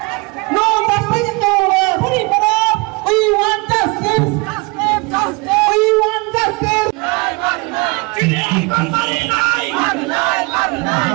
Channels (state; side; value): quieter; left; 27.2 dB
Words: No justice, no rest. We want justice. We want justice.